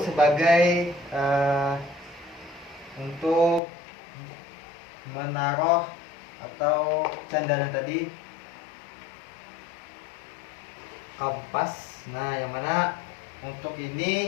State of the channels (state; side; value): drops out; right; at 3.6 s